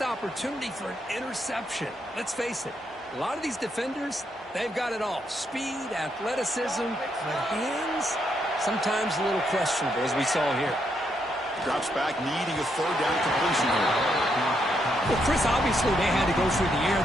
for an interception. Let's face it, a lot of these defenders, they've got it all. Speed, athleticism, but hands, sometimes a little questionable, as we saw here. Drops back, needing a third down completion here. Well, Chris, obviously they had to go through the air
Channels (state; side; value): normal; both; correlation 0.78